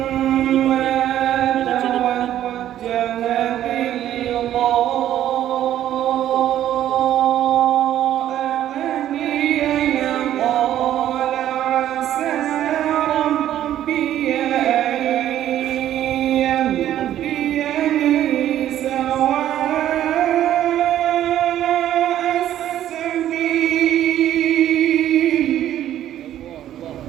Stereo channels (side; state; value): left; quieter; 11.9 dB